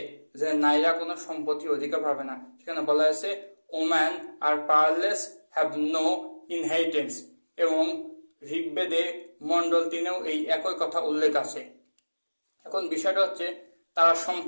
যে নারীরা কোনো সম্পত্তির অধিকার পাবে না। সেখানে বলা হয়েছে woman are powerless, have no inheritance. এবং ঋগ্বেদে মণ্ডল 3-এও এই একই কথা উল্লেখ আছে। এখন বিষয়টা হচ্ছে, তারা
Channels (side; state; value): both; inverted; correlation -1.00